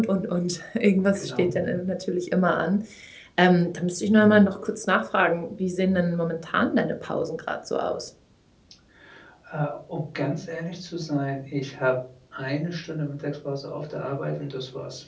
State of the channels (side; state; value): both; identical; correlation 1.00